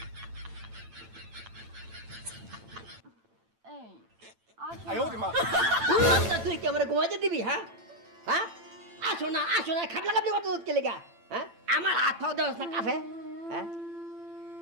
আসো না। তুই কি আমার ঘুমাইতে দিবি? হ্যাঁ হ্যাঁ, আসো না খাবলা খাবলি করতে কে লেগা? হ্যাঁ, আমার হাত পাও দেওয়াস না কাফে? হ্যাঁ,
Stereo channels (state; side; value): late; left; 8.9 ms